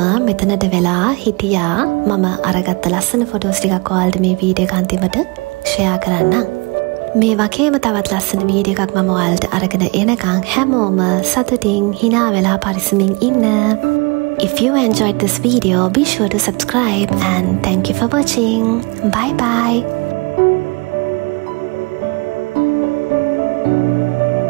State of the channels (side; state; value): left; quieter; 28.7 dB